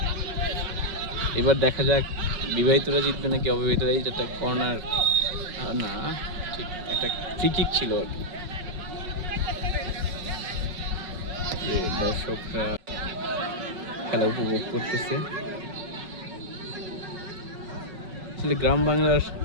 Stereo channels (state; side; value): late; left; 5.4 ms